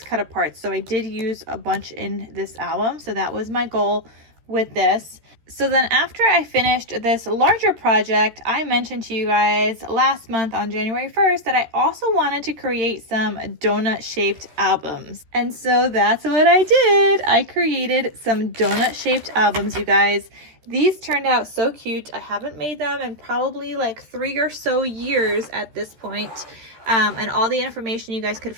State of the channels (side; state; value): left; late; 13 ms